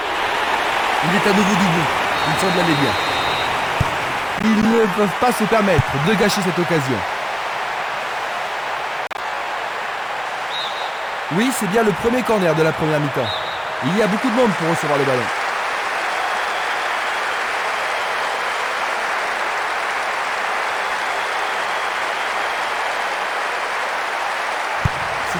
Il est à nouveau debout. Il semble aller bien. Ils ne peuvent pas se permettre de gâcher cette occasion. Oui, c'est bien le premier corner de la première mi-temps. Il y a beaucoup de monde pour recevoir le ballon.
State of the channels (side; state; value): both; identical; correlation 1.00